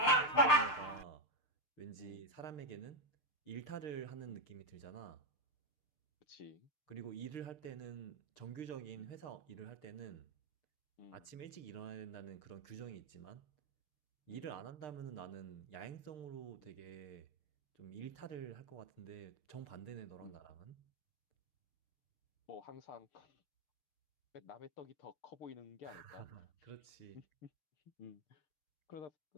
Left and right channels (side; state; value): right; late; 6.7 ms